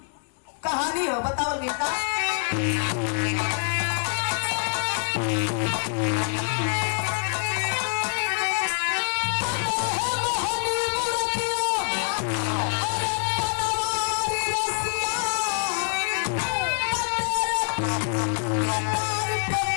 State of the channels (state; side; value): silent; right; digital silence